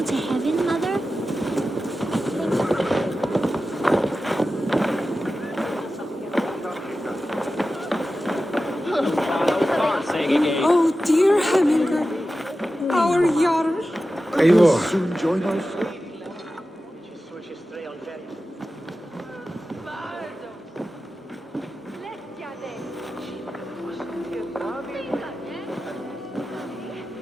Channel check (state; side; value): normal; both; correlation 0.93